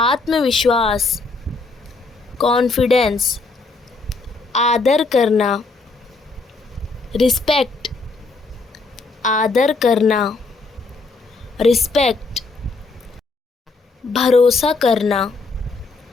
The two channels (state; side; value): quieter; right; 3.9 dB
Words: कॉन्फिडेंस। आदर करना, रिस्पेक्ट, आदर करना, रिस्पेक्ट। भरोसा करना,